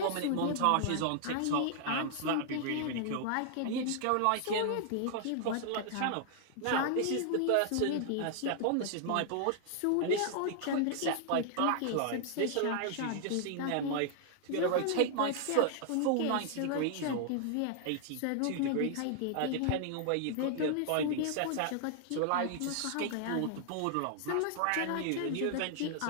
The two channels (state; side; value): different; both; correlation 0.00